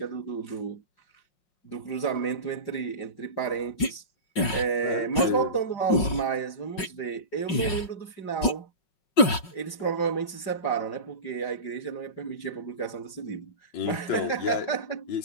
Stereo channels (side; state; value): right; late; 5.4 ms